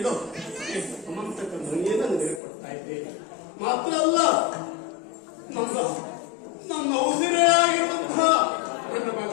ಈ ಸಮಂತಕ ಮಣಿಯನ್ನು ನನಗೆ ಕೊಡ್ತಾ ಇದ್ದೇನೆ. ಮಾತ್ರ ಅಲ್ಲ, ನಮ್ಮ ಉಸಿರಾಗಿರುವಂತಹ ನನ್ನ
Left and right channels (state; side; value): drops out; right; at 2.4 s